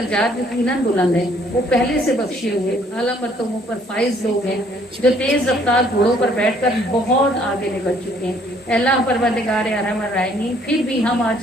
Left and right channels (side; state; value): both; normal; correlation 0.63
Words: یقیناً بلند ہیں، وہ پہلے سے بخشے ہوئے اعلیٰ مرتبوں پر فائز لوگ ہیں جو تیز رفتار گھوڑوں پر بیٹھ کر بہت آگے نکل چکے ہیں۔ اللہ پروردگار ارحم الراحمین پھر بھی ہم